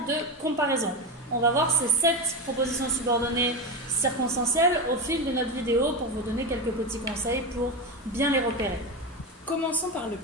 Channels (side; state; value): both; normal; correlation 0.18